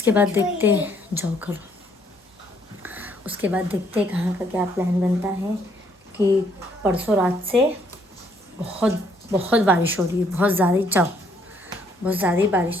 बाद देखते जाओ करो, उसके बाद देखते कहाँ का क्या प्लान बनता है। कि परसों रात से बहुत बारिश हो रही है, बहुत ज़्यादा ही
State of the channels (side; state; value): both; normal; correlation 0.67